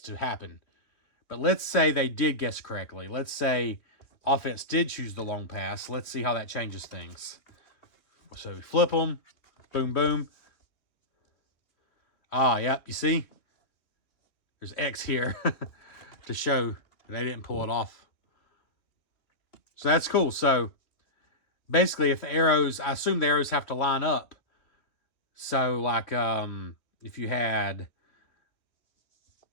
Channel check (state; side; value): late; right; 3.0 ms